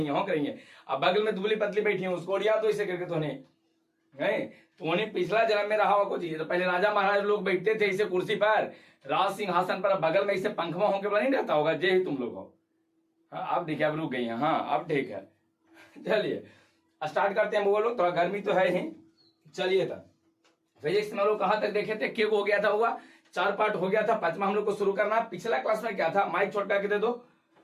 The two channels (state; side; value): identical; both; correlation 1.00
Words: है। अब बगल में दुबली पतली बैठी है, उसको उड़िया तो इसे करके तो पिछला जन्म में रहा हुआ कुछ। तो पहले राजा महाराज लोग बैठते थे इसे कुर्सी पर, राज सिंहासन पर, बगल में इसे पंखवा होंके बना नहीं रहता होगा। जे ही तुम लोग हो। हाँ अब देखिए, अब रुक गई है। हाँ अब ठीक है, चलिए स्टार्ट करते हैं। वो लोग थोड़ा गर्मी तो है ही। चलिए तब फिजिक्स में लोग कहाँ तक देखे थे? क्या हो गया था? हुआ 4 पार्ट हो गया था। 5वां हम लोग को शुरू करना। पिछला क्लास में क्या था? माइक छोड़ करके दे दो।